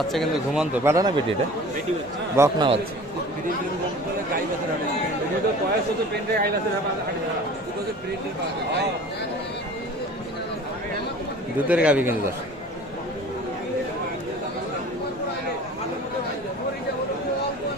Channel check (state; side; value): normal; both; correlation 0.43